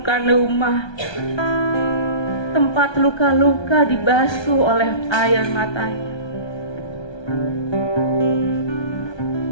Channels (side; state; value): right; late; 1.2 ms